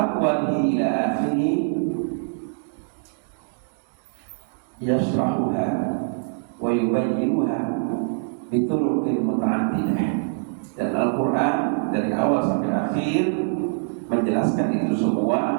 ila akhirih yashrahuha wa yubayyinuha bituruqin muta'addidah. Dan Al-Quran dari awal sampai akhir menjelaskan itu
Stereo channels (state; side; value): silent; left; digital silence